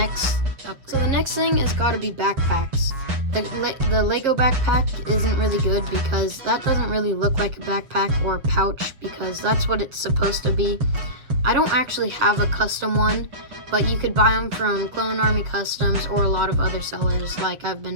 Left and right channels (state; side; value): late; left; 7.7 ms